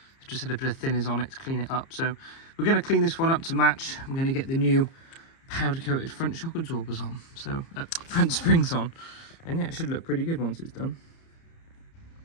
I've just had a bit of thinners on it to clean it up. So we're going to clean this one up to match. I'm going to get the new powder coated front shock absorbers on, so front springs on, and yeah, it should look pretty good once it's done.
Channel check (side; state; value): right; late; 30 ms